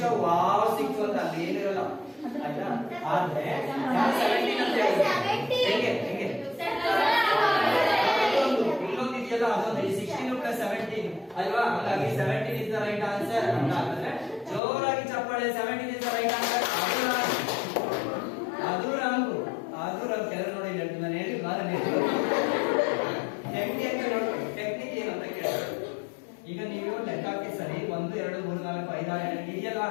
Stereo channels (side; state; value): right; drops out; at 14.6 s